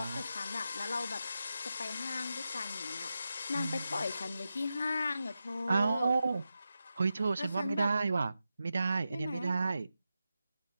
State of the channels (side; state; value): both; inverted; correlation -0.90